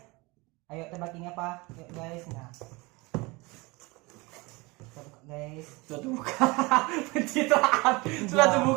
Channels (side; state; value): left; quieter; 24.8 dB